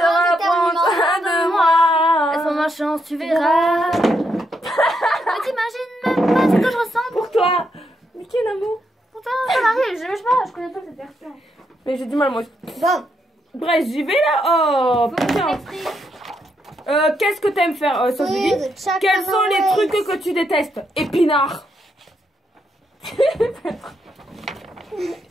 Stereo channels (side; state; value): both; normal; correlation 0.79